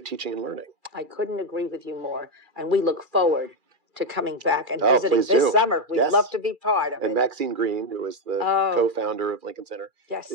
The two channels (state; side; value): late; left; 2.4 ms